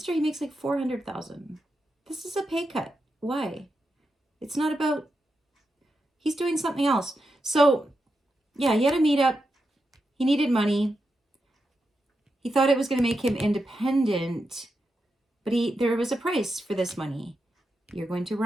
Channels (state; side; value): normal; both; correlation 0.87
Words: he makes like $400,000. This is a pay cut. Why? It's not about, he's doing something else. So yeah, he had a meetup. He needed money. He thought it was going to make him independent, but there was a price for this money. You're going to